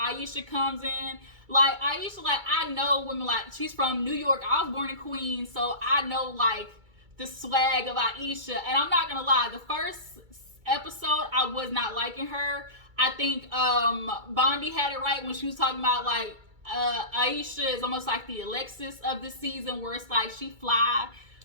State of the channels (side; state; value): left; late; 2.3 ms